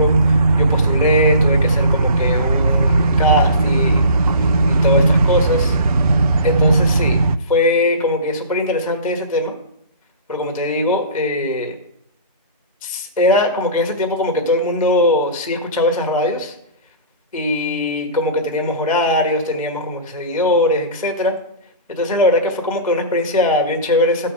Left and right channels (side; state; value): both; inverted; correlation -0.40